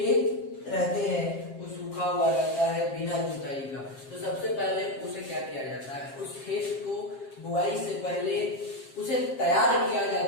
रहते हैं वो सूखा हुआ रहता है बिना जुताई का, तो सबसे पहले उसे क्या किया जाता है? उस खेत को बुआई से पहले उसे तैयार किया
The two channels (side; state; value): right; late; 7.5 ms